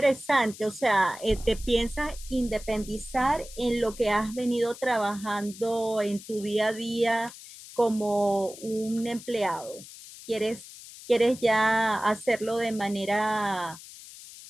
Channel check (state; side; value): noise; left; hiss, 16 dB below the sound